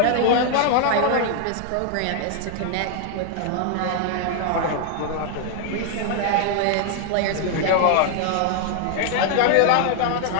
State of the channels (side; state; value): both; different; correlation 0.00